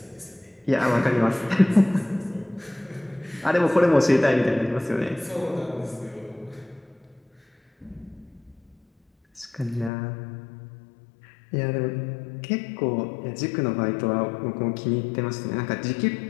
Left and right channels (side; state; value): right; drops out; at 9.9 s